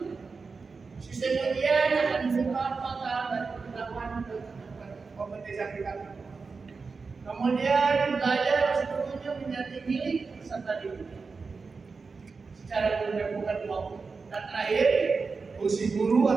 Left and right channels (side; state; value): left; quieter; 4.6 dB